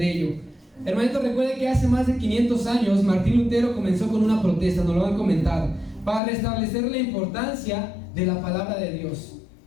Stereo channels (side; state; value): right; drops out; at 6.2 s